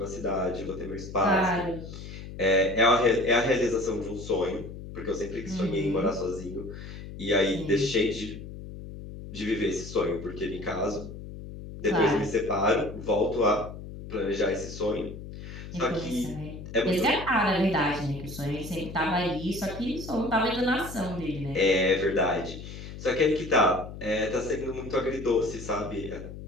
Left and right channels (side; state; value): left; noise; hum, 11 dB below the sound